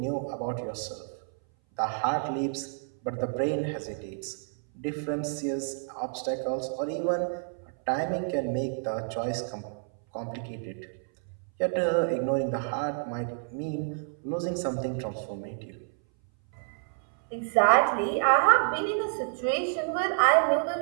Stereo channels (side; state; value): left; silent; 58 dB below the other